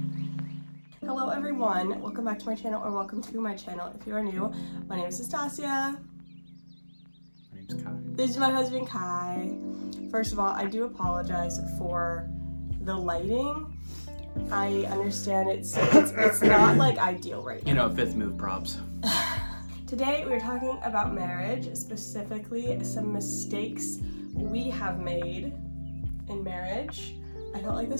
Hello everyone, welcome back to my channel, or welcome to my channel if you are new. My name is Nastasia. My name's Kai. This is my husband Kai. First of all, I do apologize for the lighting. I understand it's not like ideal right now. You know, fifth move props. Today we're talking about marriage, specifically some mistakes we have made in marriage. I felt like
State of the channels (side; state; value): both; inverted; correlation -1.00